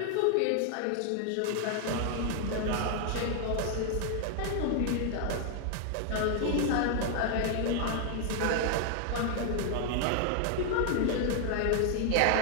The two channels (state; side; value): different; both; correlation 0.00